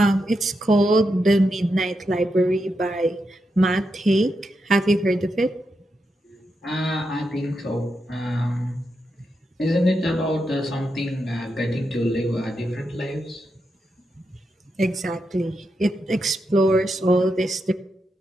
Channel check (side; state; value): both; normal; correlation 0.85